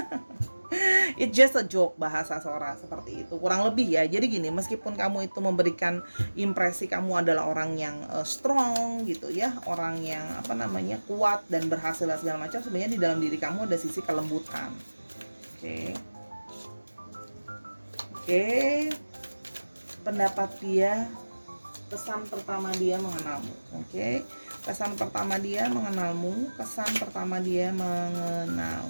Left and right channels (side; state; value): both; inverted; correlation -1.00